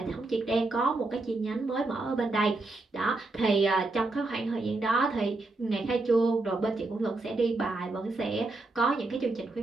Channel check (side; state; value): left; quieter; 3.1 dB